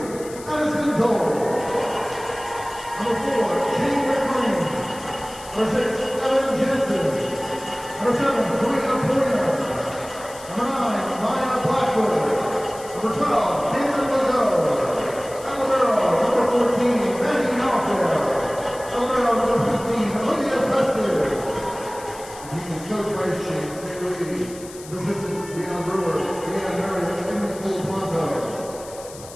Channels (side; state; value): left; noise; hiss, 17 dB below the sound